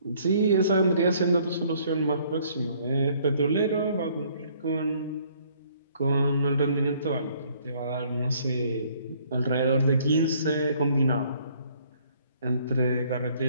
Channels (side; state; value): both; inverted; correlation -0.62